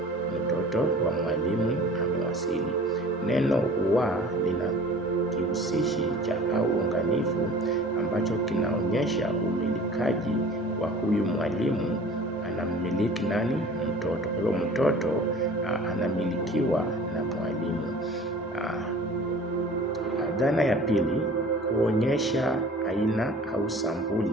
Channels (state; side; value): normal; both; correlation 0.46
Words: Mtoto wa mwalimu amewasili. Neno wa lina kihusishi cha unganifu ambacho kinaonyesha umilikaji wa huyu mwalimu. Anamiliki nani? Mtoto. Kwa hiyo mtoto anamilikiwa na mwalimu. Dhana ya pili, kuonyesha aina au